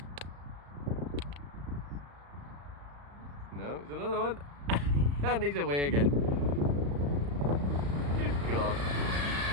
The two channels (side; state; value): left; late; 35 ms